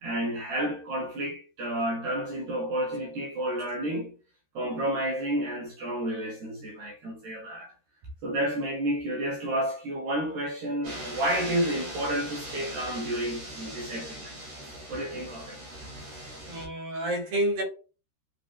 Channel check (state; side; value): late; left; 13 ms